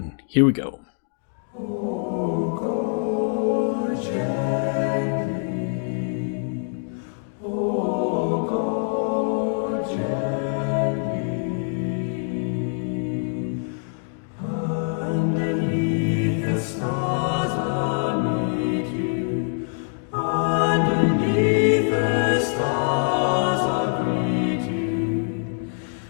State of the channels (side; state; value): right; silent; 62 dB below the other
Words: Here we go.